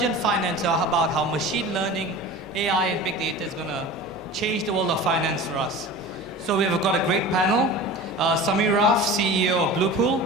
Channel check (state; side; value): normal; both; correlation 0.36